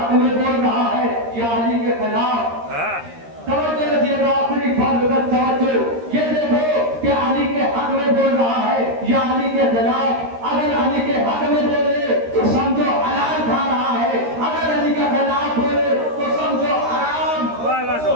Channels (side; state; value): left; late; 13 ms